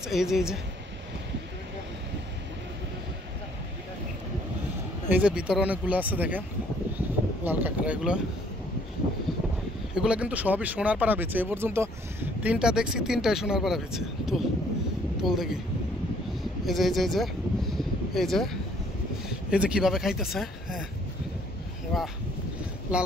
এই যে এই যে ভিতরে অনেকগুলো আছে, দেখেন লাল কাঁকড়া। এগুলো কিন্তু সবই সোনার পাড়া বেচে। এ পর্যন্ত 3টা দেখছি, 3টাই সোনার পাড়া বেচে। তুল দেখি। এই যে এই যে এই যে কিভাবে খাইতেছে। হ্যাঁ, বাহ, লাল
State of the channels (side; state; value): both; normal; correlation 0.62